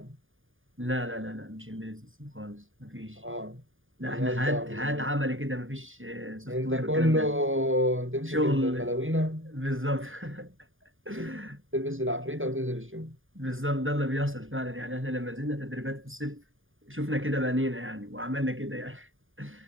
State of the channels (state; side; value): late; left; 0.59 ms